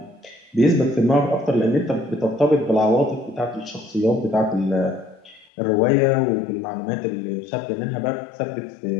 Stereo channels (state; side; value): drops out; right; at 5.5 s